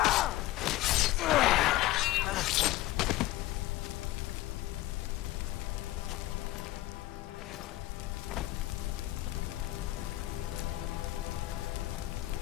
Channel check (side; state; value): right; quieter; 16.6 dB